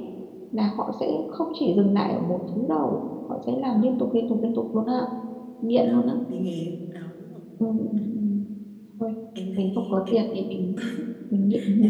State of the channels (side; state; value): both; identical; correlation 1.00